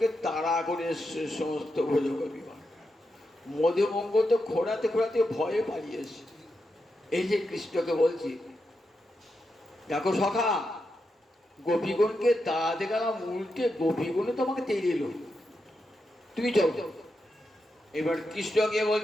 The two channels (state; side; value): normal; both; correlation 0.86